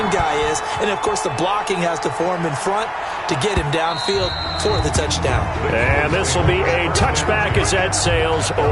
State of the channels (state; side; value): identical; both; correlation 1.00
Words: guy is. And, of course, the blocking has to form in front to get him downfield for the touchdown. And this will be a touchback as that sails